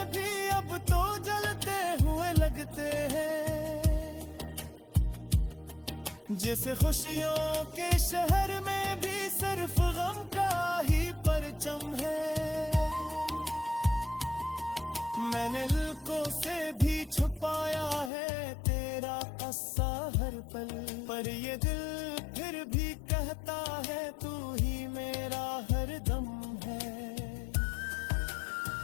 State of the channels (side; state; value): right; drops out; at 18.1 s